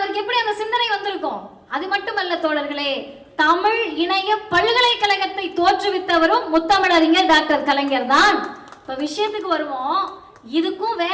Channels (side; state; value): both; identical; correlation 1.00